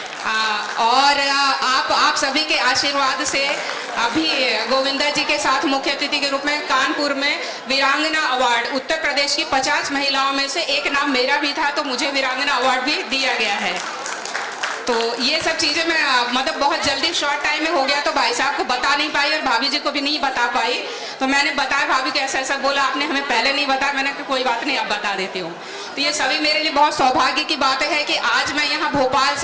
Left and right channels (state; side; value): identical; both; correlation 1.00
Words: और आप सभी के आशीर्वाद से अभी गोविंदा जी के साथ मुख्य अतिथि के रूप में कानपुर में वीरांगना अवार्ड, उत्तर प्रदेश की 50 महिलाओं में से एक नाम मेरा भी था, तो मुझे वीरांगना अवार्ड भी दिया गया है। तो ये सब चीज़ें मैं बहुत जल्दी शॉर्ट टाइम में हो गया तो भाई साहब को बता नहीं पाई और भाभी जी को भी नहीं बता पाई, तो मैंने बताया भाभी को ऐसा ऐसा बोला, आपने हमें पहले नहीं बताया। मैंने कहा कोई बात नहीं, अब बता देती हूँ। तो ये सभी मेरे लिए बहुत सौभाग्य की बात है कि आज मैं यहाँ भोपाल